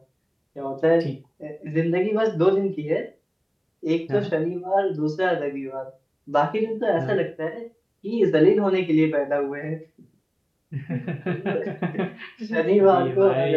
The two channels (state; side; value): identical; both; correlation 1.00